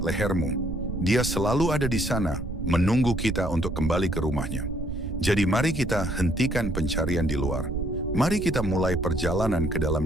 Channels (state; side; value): noise; right; rumble, 5 dB below the sound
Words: Dia selalu ada di sana, menunggu kita untuk kembali ke rumahnya. Jadi mari kita hentikan pencarian di luar. Mari kita mulai perjalanan ke